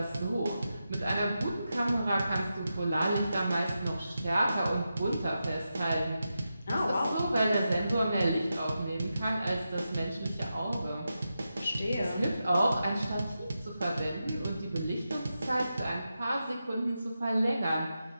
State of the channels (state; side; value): inverted; both; correlation -0.89